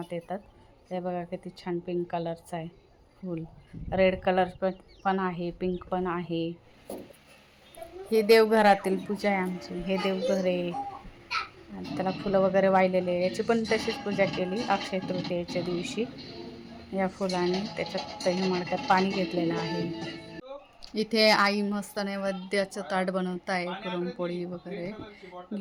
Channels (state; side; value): identical; both; correlation 1.00